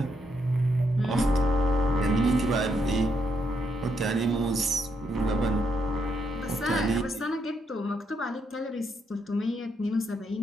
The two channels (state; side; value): normal; both; correlation 0.77